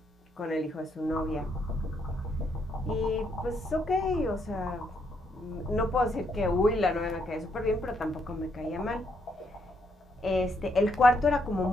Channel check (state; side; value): normal; both; correlation 0.75